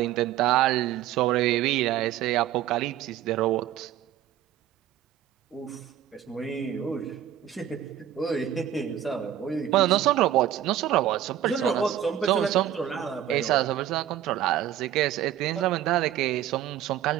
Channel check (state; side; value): quieter; left; 11.2 dB